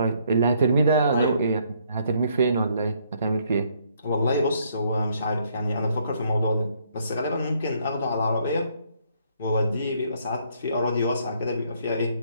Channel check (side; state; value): both; inverted; correlation -0.68